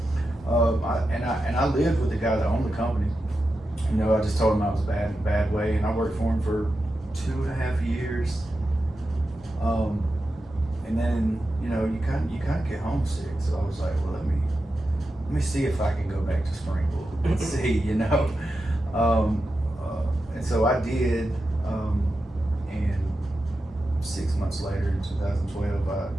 I lived with the guy that owned the company. You know, I just told him I was bad in a bad way, and I worked for him for 2.5 years. And then, you know, you kind of get homesick. So I was like, well, let me see if I can go back to Springville and see, you know. And so I did. And 6 months later, in 2012,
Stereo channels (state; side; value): normal; both; correlation 0.90